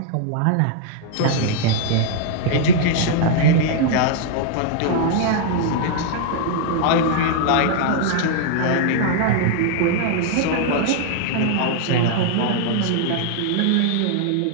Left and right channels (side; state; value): both; different; correlation -0.01